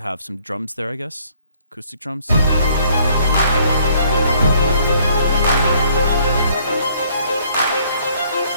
some drums there, I guess. Acoustic drums.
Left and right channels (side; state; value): both; inverted; correlation -0.63